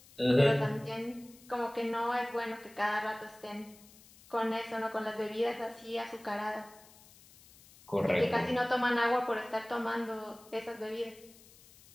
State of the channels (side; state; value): left; noise; hiss, 24 dB below the sound